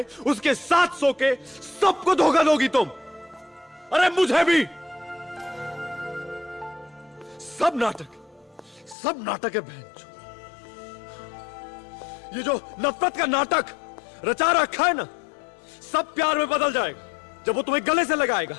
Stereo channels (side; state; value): right; drops out; at 9.0 s